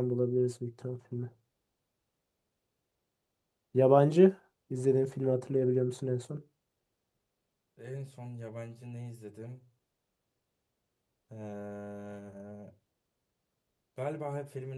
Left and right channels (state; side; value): identical; both; correlation 1.00